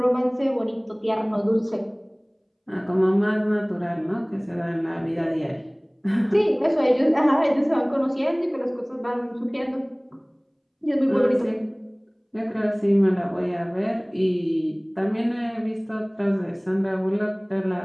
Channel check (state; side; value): identical; both; correlation 1.00